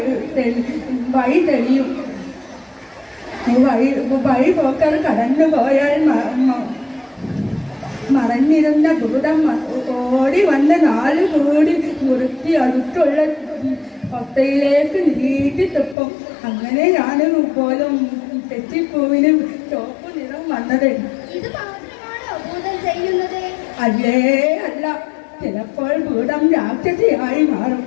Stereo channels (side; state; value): right; drops out; at 16.0 s